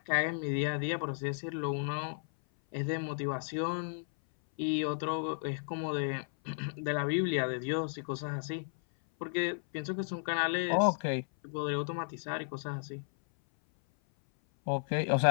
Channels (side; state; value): right; silent; 55 dB below the other